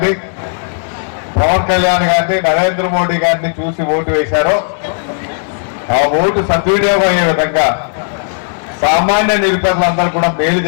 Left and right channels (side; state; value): right; silent; digital silence